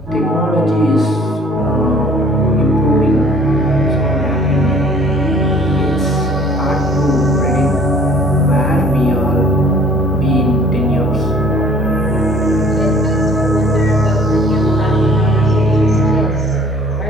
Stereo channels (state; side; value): normal; both; correlation 0.53